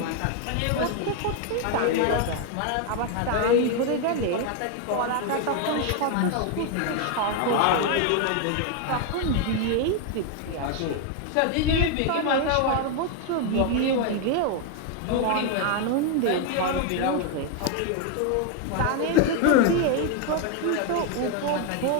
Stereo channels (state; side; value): different; both; correlation 0.01